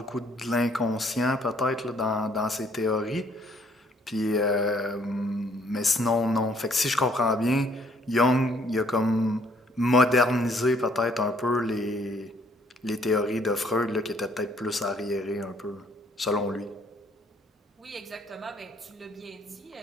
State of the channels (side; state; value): both; normal; correlation 0.64